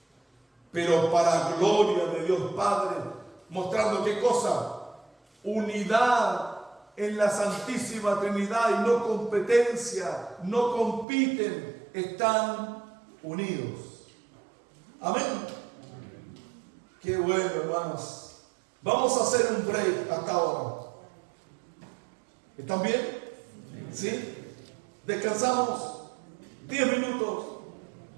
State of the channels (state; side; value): drops out; left; at 11.1 s